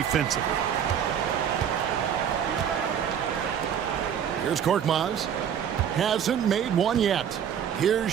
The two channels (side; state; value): left; quieter; 8.6 dB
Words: Here's Korkmaz. Hasn't made one yet. Here's